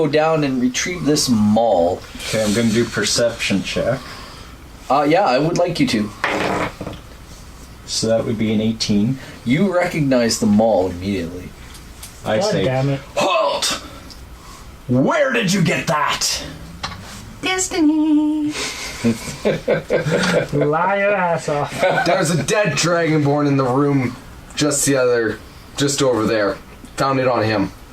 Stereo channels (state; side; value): identical; both; correlation 1.00